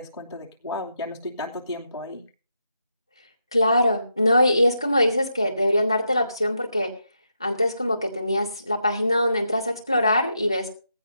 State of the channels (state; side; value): inverted; both; correlation -0.83